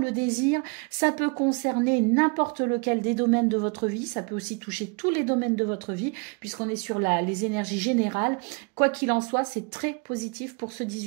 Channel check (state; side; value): quieter; left; 31.1 dB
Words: désir. Ça peut concerner n'importe lequel des domaines de votre vie, ça peut aussi toucher tous les domaines de votre vie puisqu'on est sur les énergies générales. Quoi qu'il en soit, c'est très positif pour ce